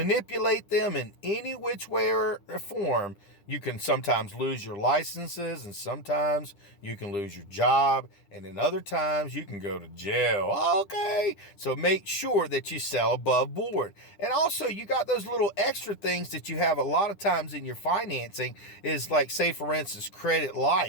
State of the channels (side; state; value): right; late; 10 ms